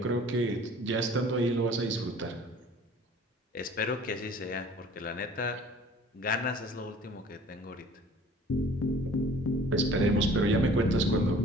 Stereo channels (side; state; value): both; normal; correlation 0.49